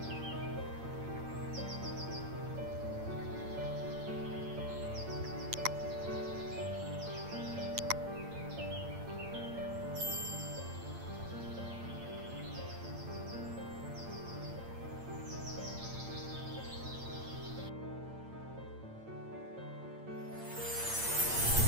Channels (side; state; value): left; late; 8.8 ms